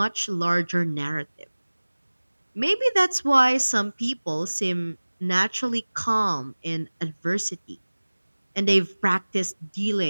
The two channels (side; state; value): both; inverted; correlation -1.00